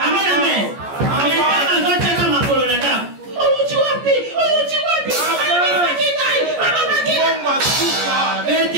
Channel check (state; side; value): late; left; 14 ms